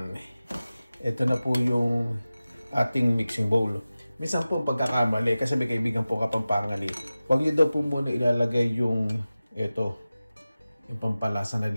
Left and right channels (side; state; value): both; inverted; correlation -0.96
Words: Ito na po yung ating mixing bowl. Minsan po pagkakamali, kasi may kaibigan po Kapampangan eh. Huwag nyo daw po muna ilalagay yung ito, yung pampalasa na